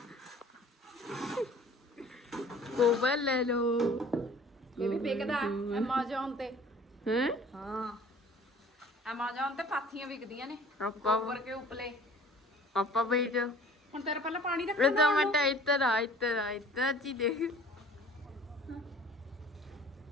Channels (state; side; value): normal; both; correlation 0.49